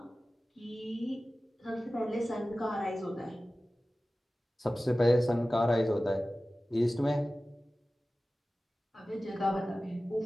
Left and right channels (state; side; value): normal; both; correlation 0.96